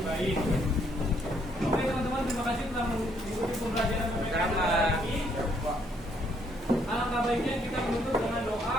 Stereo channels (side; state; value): both; normal; correlation 0.69